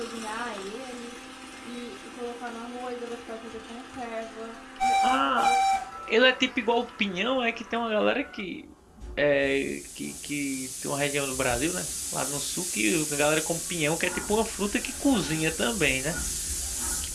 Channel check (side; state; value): both; identical; correlation 1.00